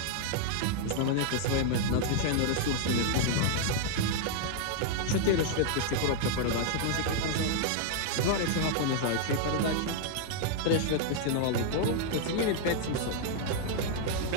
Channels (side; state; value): both; different; correlation -0.01